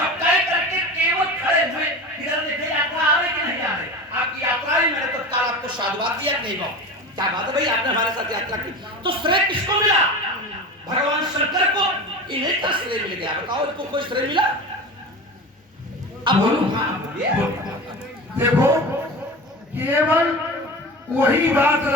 तय करके केवल खड़े हुए इधर देखे यात्रा आ रही कि नहीं आ रही। आपकी यात्रा ही मैंने तत्काल आपको साधुवाद दिया नहीं गो, क्या बात है भाई, आपने हमारे साथ यात्रा की। तो श्रेय किसको मिला? भगवान शंकर को, इन्हीं का श्रेय मिल गया। बताओ इनको कोई श्रेय मिला? अब बोलो। देखो, केवल वही बात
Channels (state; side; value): normal; both; correlation 0.30